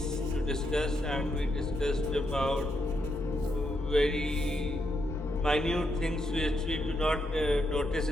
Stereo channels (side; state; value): both; normal; correlation 0.81